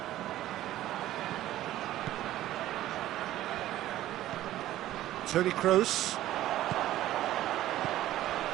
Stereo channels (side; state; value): left; quieter; 14.2 dB